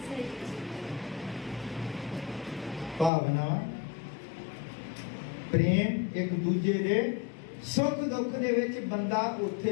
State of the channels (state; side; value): drops out; right; at 3.1 s